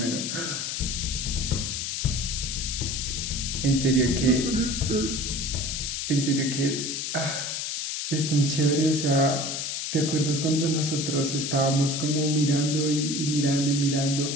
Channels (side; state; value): left; noise; hiss, 3 dB below the sound